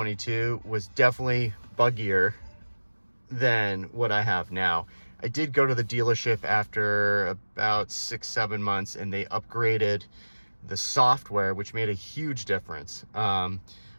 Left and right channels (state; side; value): inverted; both; correlation -1.00